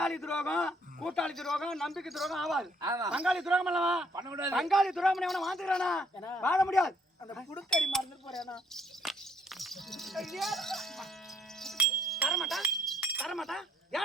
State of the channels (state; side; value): normal; both; correlation 0.67